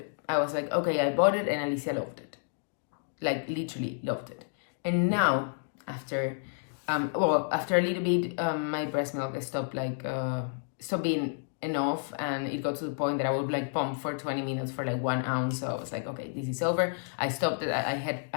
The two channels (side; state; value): right; silent; digital silence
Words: I was like, okay, I bought it, and Alicia loved it, like literally loved it. And now after a little bit, my breast milk stopped being enough, and it got to the point that I would like pump for 20 minutes for like 1 ounce. So I was like, okay, this is over. I stopped it.